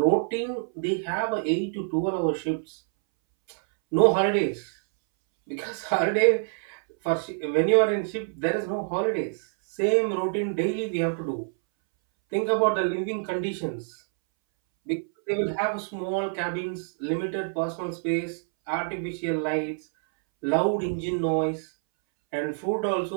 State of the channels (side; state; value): left; silent; 61 dB below the other